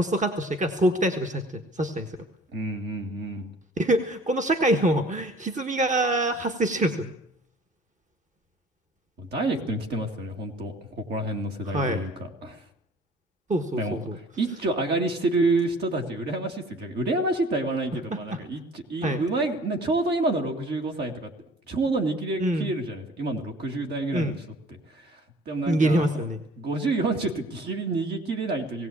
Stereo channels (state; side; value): normal; both; correlation 0.50